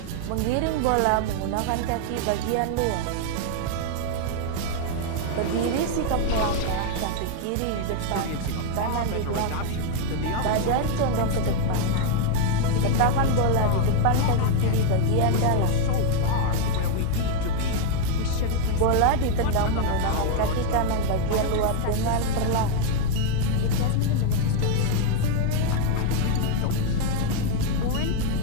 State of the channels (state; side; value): different; both; correlation 0.00